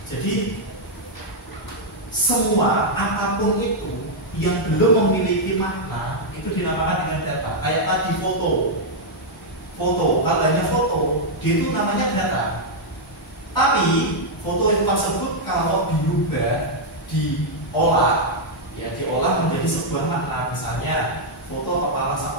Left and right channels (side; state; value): both; normal; correlation -0.03